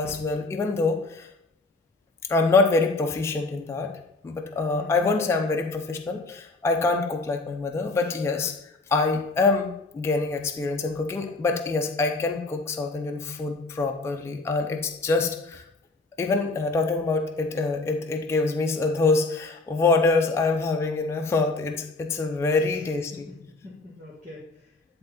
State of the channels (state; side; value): quieter; right; 3.2 dB